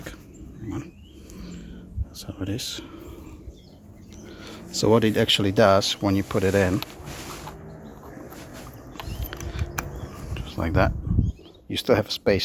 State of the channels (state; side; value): identical; both; correlation 1.00